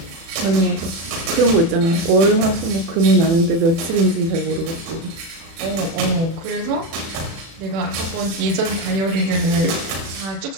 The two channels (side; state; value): left; late; 36 ms